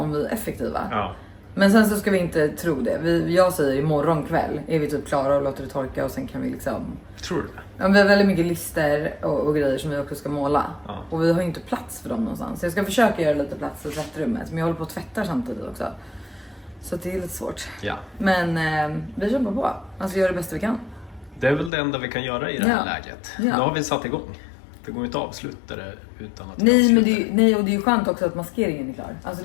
vi är effektiva. Ja. Men sen så ska vi inte tro det. Jag säger imorgon kväll är vi typ klara och låter det torka och sen kan vi liksom... Tror du det? Ja, vi har väldigt mycket lister och grejer som vi också ska måla. Ja. Och vi har ju inte plats för dem någonstans. Så jag ska försöka göra lite plats i tvättrummet. Men jag håller på att tvätta samtidigt också. Så det är lite svårt. Ja. Men vi kämpar på. Alltså gör det bästa vi kan. Det är väl det enda vi kan göra i det här läget. Ja. Nu har vi satt igång. Det går ju inte att avsluta det utan att Nej, men och det är ju skönt också att maskeringen är klar. Alltså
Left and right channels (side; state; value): right; drops out; at 21.7 s